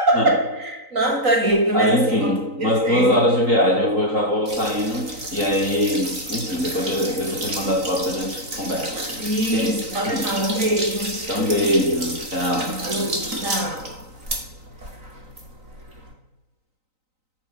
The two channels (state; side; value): late; left; 3.9 ms